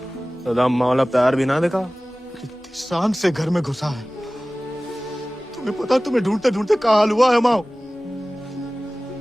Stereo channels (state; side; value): normal; both; correlation 0.98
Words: दादा अम्मा वाला प्यार भी ना देखा। कितनी शान से घर में घुसा है। तुम्हें पता, तुम्हें ढूंढते ढूंढते कहाँ हाल हुआ है माओ।